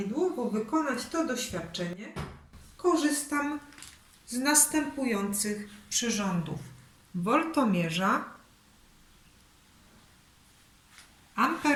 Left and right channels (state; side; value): identical; both; correlation 1.00